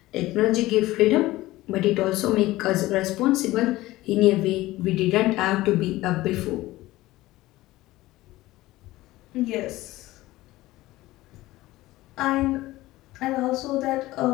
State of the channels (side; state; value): right; quieter; 17.7 dB